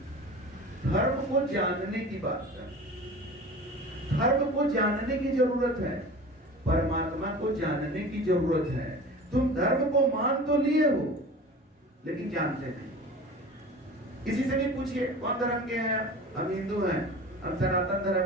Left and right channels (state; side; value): normal; both; correlation 0.38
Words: धर्म को जानने की बात कर रहे हैं। धर्म को जानने की जरूरत है, परमात्मा को जानने की जरूरत है। तुम धर्म को मान तो लिए हो लेकिन जानते नहीं। किसी से भी पूछिए कौन धर्म के हैं? हम हिंदू हैं, हम सनातन